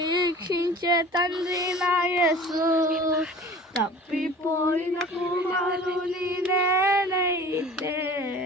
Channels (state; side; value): normal; both; correlation 0.43